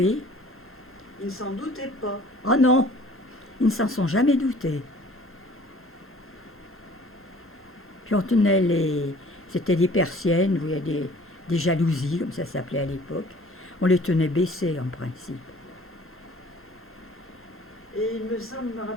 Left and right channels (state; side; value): normal; both; correlation 0.51